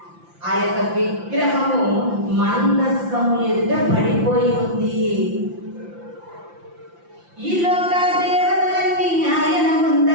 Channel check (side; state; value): left; late; 5.8 ms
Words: ఆ యొక్క విగ్రహము మందసము ఎదుట పడిపోయి ఉంది. ఈ లోక దేవతలన్నీ ఆయన